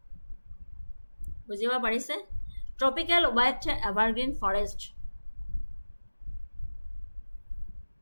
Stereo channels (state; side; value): inverted; both; correlation -1.00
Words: বুজিব পাৰিছে? Tropical wet evergreen forest.